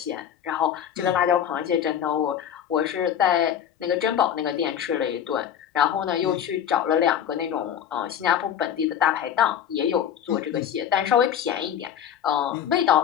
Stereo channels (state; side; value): quieter; right; 9.4 dB